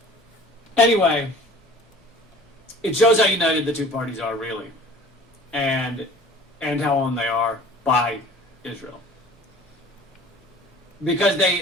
Anyway, it shows how united the two parties are, really, and how owned they are by Israel. Because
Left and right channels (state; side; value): normal; both; correlation 0.47